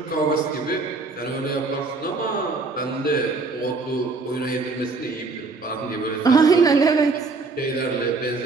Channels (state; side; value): quieter; left; 3.9 dB